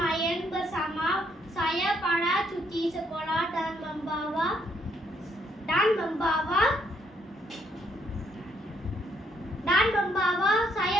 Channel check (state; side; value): normal; both; correlation 0.71